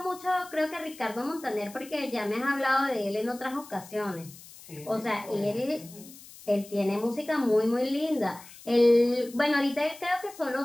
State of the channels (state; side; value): noise; left; hiss, 19 dB below the sound